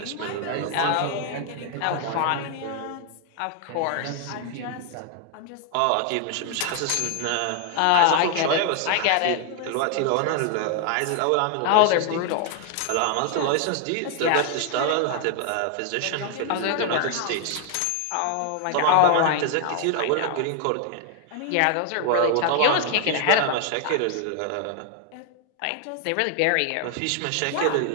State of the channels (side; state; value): both; different; correlation 0.00